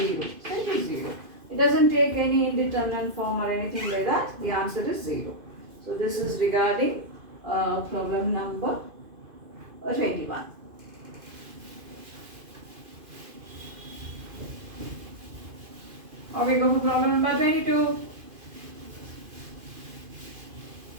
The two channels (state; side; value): late; left; 2.5 ms